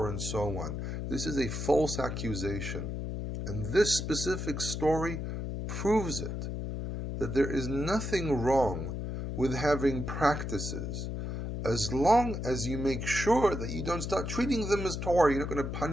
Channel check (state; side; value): noise; left; hum, 4 dB below the sound